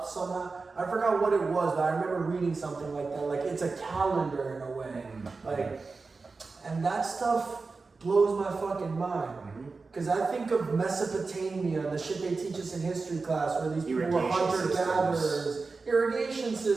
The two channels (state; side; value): quieter; left; 4.1 dB